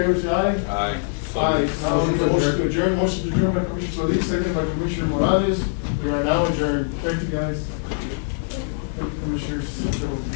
say aye. Aye. Aye. Now, we need a motion to adjourn, motion to adjourn by Commissioner Solis, second by Commissioner Morales. We are now adjourned. Thank you, guys. Thank you, Commissioners.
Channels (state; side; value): silent; right; digital silence